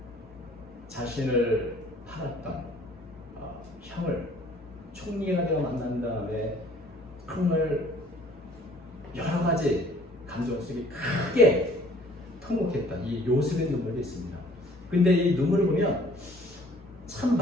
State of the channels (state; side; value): normal; both; correlation 0.55